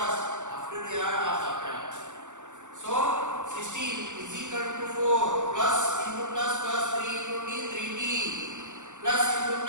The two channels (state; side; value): late; left; 0.85 ms